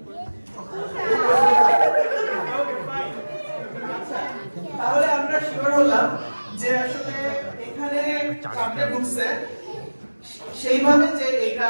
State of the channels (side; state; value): both; inverted; correlation -1.00